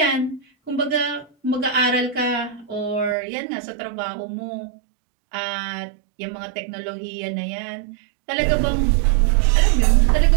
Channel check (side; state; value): left; drops out; at 3.2 s